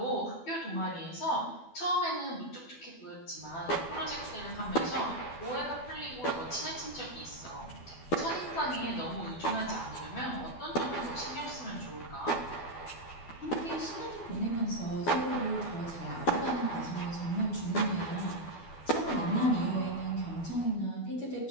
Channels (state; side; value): late; right; 12 ms